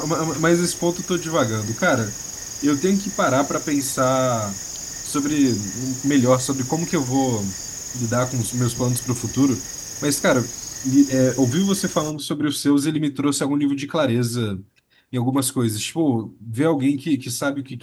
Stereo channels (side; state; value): both; identical; correlation 1.00